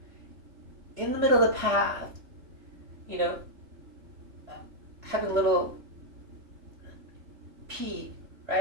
in the middle of the path, having a little pee,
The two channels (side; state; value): left; late; 3.4 ms